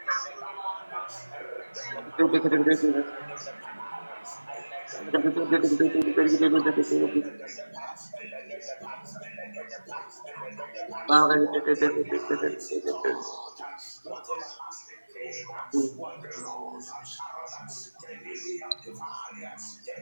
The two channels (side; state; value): both; inverted; correlation -1.00